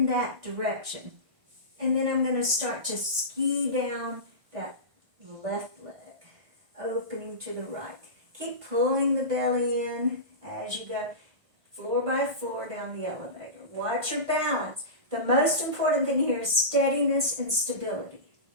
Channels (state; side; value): late; left; 1.5 ms